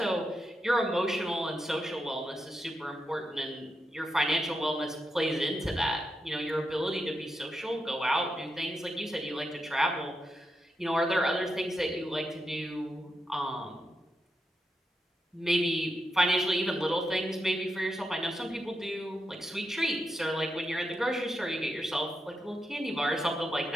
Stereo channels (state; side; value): normal; both; correlation 0.86